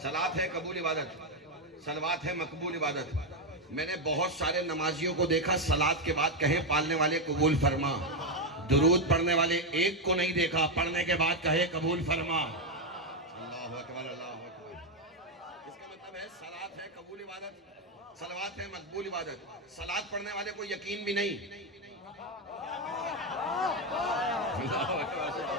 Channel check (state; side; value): normal; both; correlation 0.05